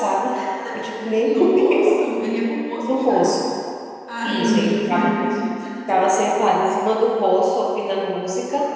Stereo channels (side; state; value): both; identical; correlation 1.00